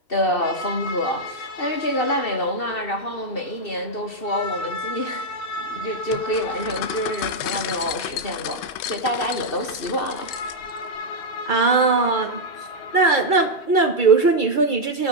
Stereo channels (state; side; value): late; right; 2.7 ms